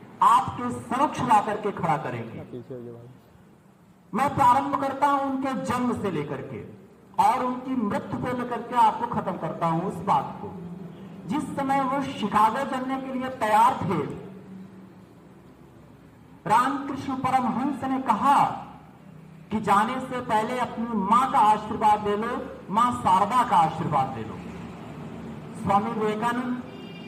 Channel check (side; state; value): both; identical; correlation 1.00